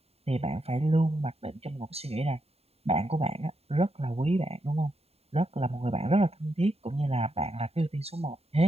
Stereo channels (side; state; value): left; late; 0.29 ms